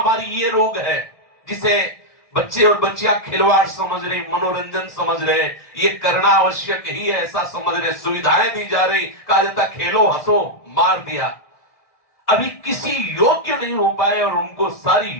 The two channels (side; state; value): right; late; 1.7 ms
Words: ये रोग है, जिसे बच्चे और बच्चियां खिलवाड़ समझ रहे, मनोरंजन समझ रहे, ये करना आवश्यक ही है ऐसा समझ रहे, सुविधाएं दी जा रही, कहा जाता खेलो हंसो, मार दिया। अभी किसी योग्य नहीं हो पाए और उनको सारी